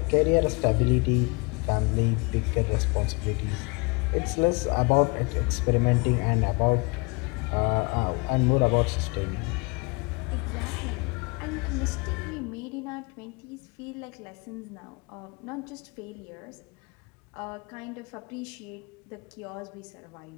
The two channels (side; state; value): right; quieter; 29.5 dB